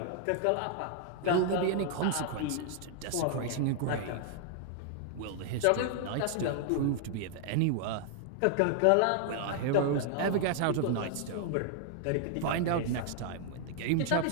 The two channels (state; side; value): different; both; correlation 0.00